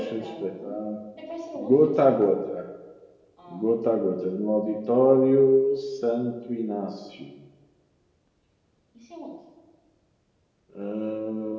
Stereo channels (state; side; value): identical; both; correlation 1.00